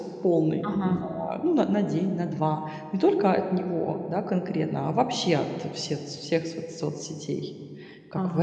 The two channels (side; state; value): both; identical; correlation 1.00